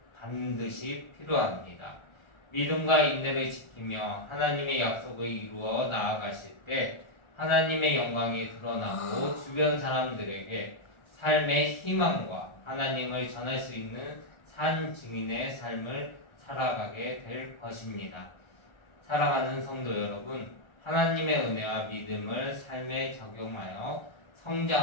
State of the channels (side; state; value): right; late; 1.3 ms